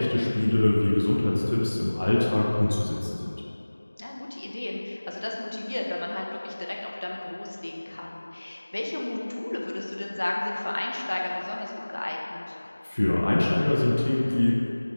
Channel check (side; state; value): both; inverted; correlation -1.00